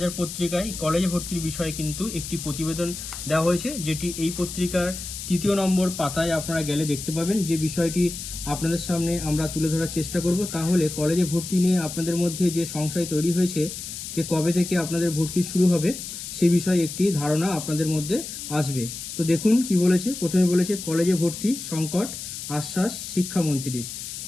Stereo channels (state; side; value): noise; left; hiss, 8 dB below the sound